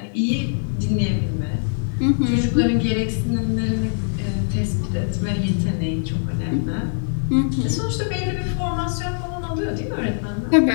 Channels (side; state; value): right; silent; 64 dB below the other